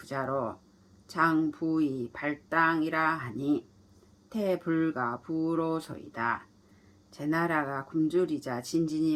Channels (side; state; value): both; identical; correlation 1.00